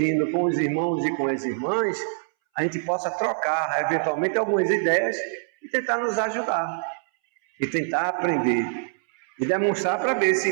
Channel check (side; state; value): left; silent; 62 dB below the other